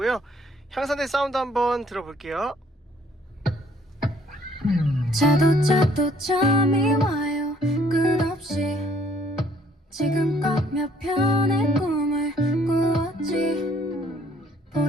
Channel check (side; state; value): both; normal; correlation 0.63